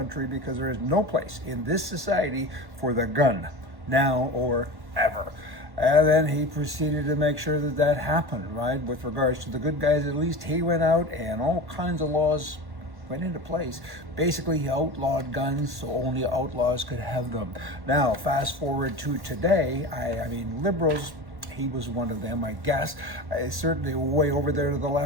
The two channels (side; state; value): left; late; 1.1 ms